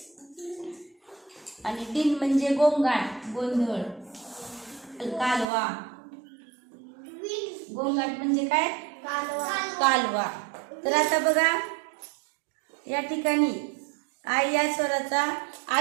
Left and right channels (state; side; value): drops out; left; at 5.5 s